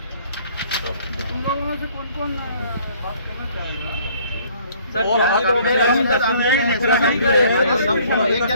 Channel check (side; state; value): both; inverted; correlation -0.58